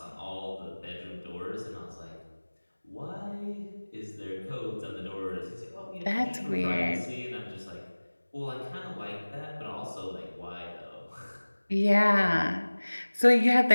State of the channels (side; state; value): both; inverted; correlation -1.00